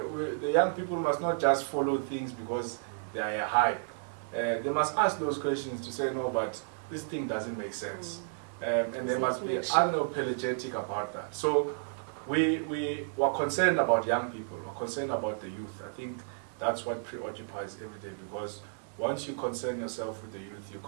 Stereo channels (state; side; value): silent; left; digital silence